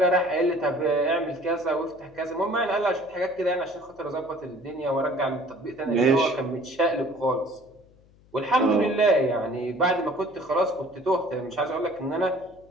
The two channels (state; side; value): noise; left; hum, 28 dB below the sound